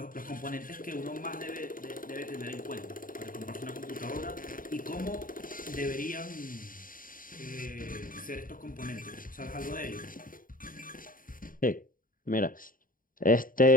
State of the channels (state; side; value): late; right; 0.40 ms